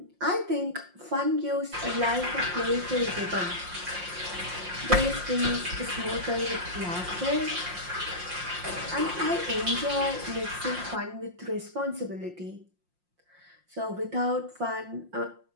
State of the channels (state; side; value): late; left; 5.6 ms